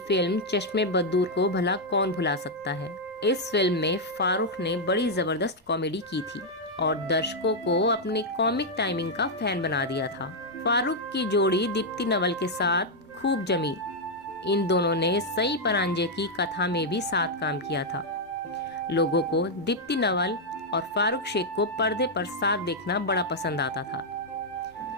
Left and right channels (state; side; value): normal; both; correlation -0.02